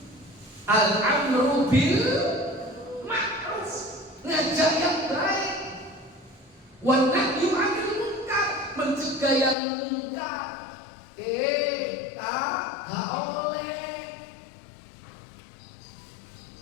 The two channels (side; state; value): right; drops out; at 9.6 s